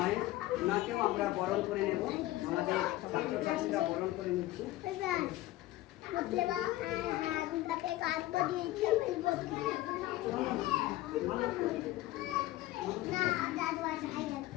ওনাকেও আমরা বরণ করে নেব। আমাদের ছাত্রছাত্রীরা বরণ করে নিচ্ছে।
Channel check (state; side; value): quieter; right; 16.7 dB